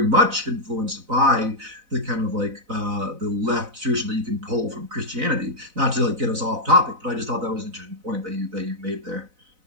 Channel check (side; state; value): left; late; 4.0 ms